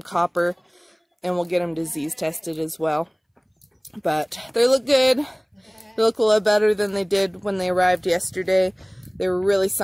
copper, and we'll get them disease tested as well. But they look good. They look a lot better than they did when they arrived yesterday. They were really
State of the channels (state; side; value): identical; both; correlation 1.00